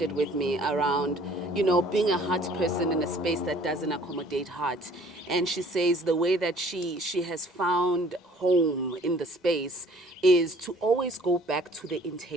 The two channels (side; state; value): both; normal; correlation 0.54